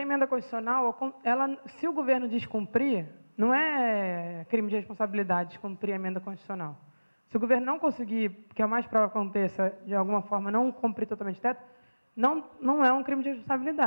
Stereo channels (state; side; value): inverted; both; correlation -1.00